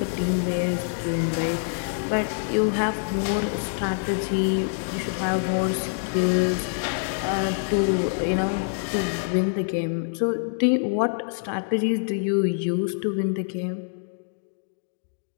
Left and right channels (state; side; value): silent; right; digital silence